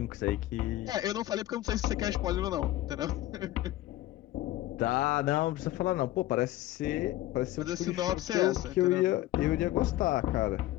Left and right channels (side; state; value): right; quieter; 15.6 dB